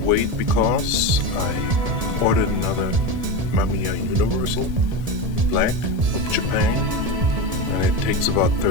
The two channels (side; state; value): left; late; 1.7 ms